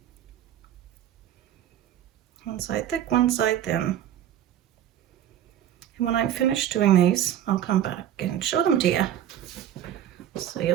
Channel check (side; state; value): left; quieter; 11.0 dB